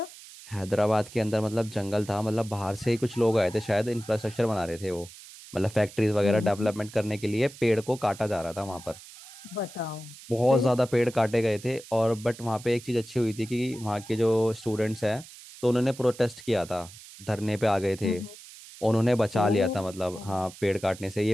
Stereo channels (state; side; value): noise; right; hiss, 18 dB below the sound